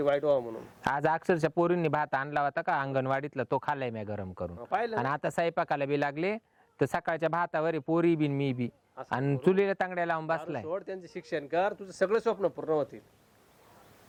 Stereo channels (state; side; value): identical; both; correlation 1.00